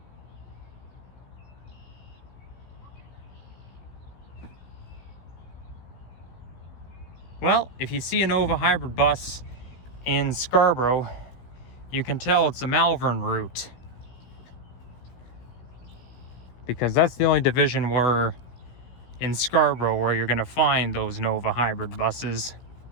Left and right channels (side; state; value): right; late; 16 ms